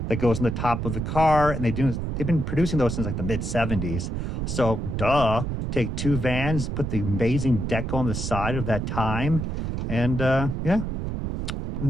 that goes in the top of the car, and they've been producing those since like the mid-70s. So take 2 vans, put the amazing deck on the side of that time, and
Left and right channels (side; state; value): right; noise; rumble, 3 dB below the sound